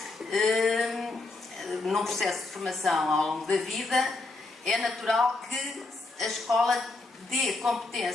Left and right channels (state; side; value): quieter; right; 3.3 dB